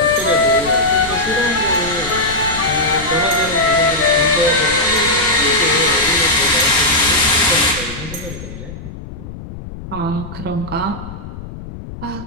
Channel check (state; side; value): noise; left; rumble, 12 dB below the sound